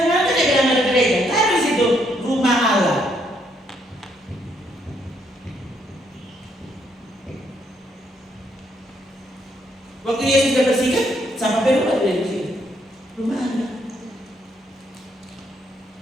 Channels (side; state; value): both; normal; correlation 0.73